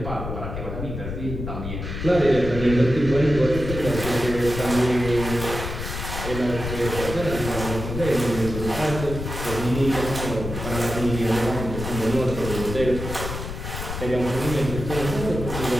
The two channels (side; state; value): left; noise; rumble, 6 dB below the sound